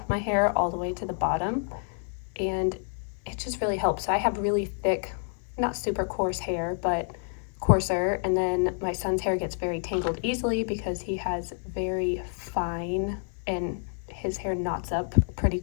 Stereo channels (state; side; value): silent; right; 59 dB below the other